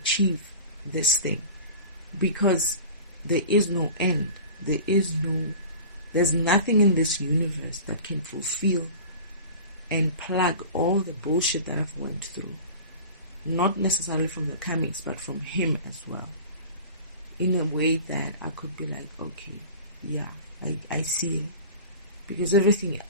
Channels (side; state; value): both; inverted; correlation -0.37